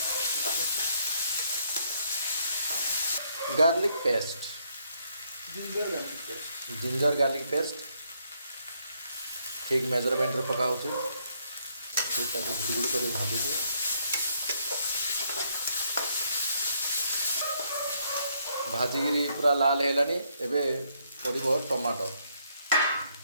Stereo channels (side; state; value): both; inverted; correlation -0.72